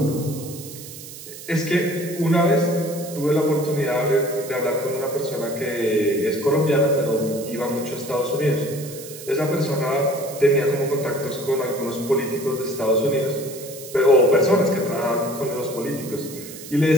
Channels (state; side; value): noise; right; hiss, 14 dB below the sound